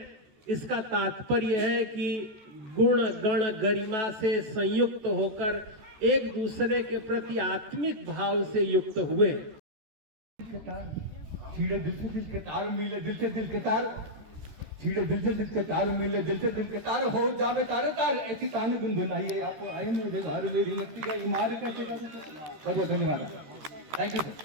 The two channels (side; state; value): left; late; 13 ms